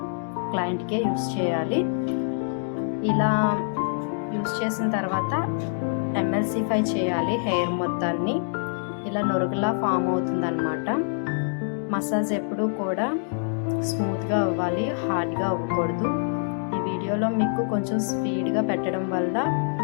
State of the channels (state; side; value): silent; right; digital silence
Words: క్లయింట్కే యూస్ చేయాలి. ఇలా యూస్ చేసిన తర్వాత ఎంఎల్సిఫై చేయాలి హెయిర్ మొత్తాన్ని. ఇలా నొరుగులా ఫామ్ అవుతుందన్నమాట. మసాజ్ ఎప్పుడూ కూడా స్మూత్గా అవ్వాలి, హార్డ్గా అవ్వకూడదు. ఈ వీడియోలో మీకు కొంచెం స్పీడ్గా పెట్టడం వల్ల